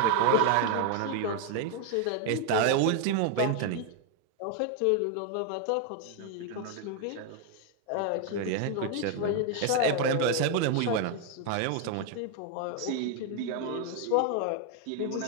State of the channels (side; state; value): both; different; correlation 0.01